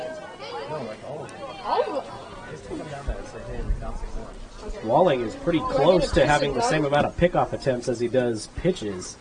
Walling is pretty close to having the same amount of pickoff attempts as he does pitches.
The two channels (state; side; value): identical; both; correlation 1.00